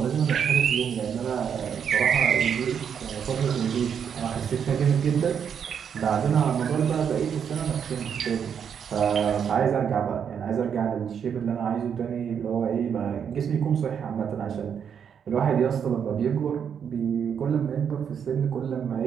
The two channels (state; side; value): quieter; left; 7.7 dB